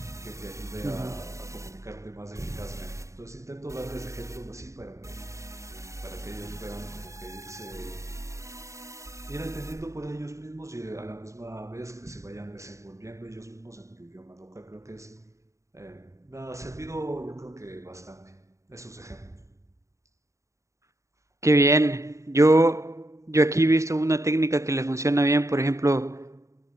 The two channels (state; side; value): late; left; 0.15 ms